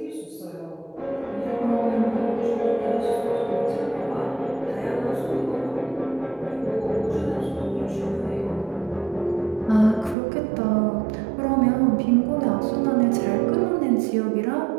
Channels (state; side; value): drops out; left; at 10.2 s